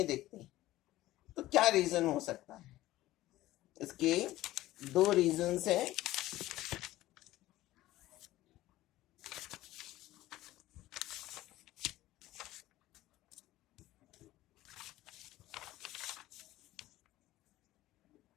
दिखती, तो क्या रीजन हो सकता है? इसके दो रीजंस हैं।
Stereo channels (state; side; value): quieter; right; 16.2 dB